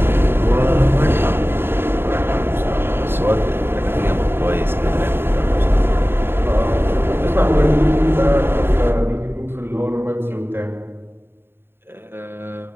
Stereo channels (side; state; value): left; late; 0.11 ms